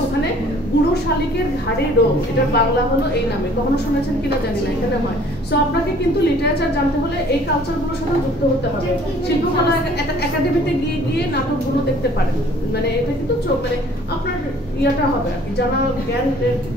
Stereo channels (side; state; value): both; normal; correlation 0.54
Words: ওখানে বুড়ো শালিকের ঘাড়ে রোগ, এটার বাংলা হলো এই নামে। কখনো শুনেছেন কিনা জানি না, এখানে হয়। সো আপনাকে কিন্তু লিটারেচার জানতে হলে এই কালচারগুলোর সাথে যুক্ত হতে হবে। শিল্পকলা একাডেমিতে গিয়ে নাটকগুলো দেখতে পারেন, মানে এটা কিন্তু মানে আপনার ইয়াটা হবে আর কি, জানা